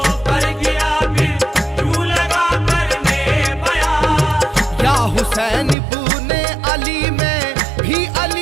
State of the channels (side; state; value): left; drops out; at 5.8 s